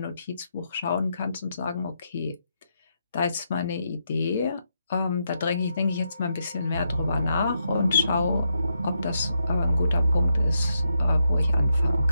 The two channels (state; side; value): inverted; both; correlation -0.81